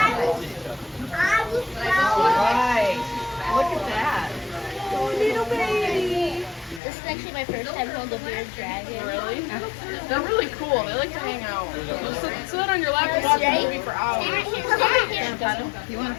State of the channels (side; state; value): right; drops out; at 6.8 s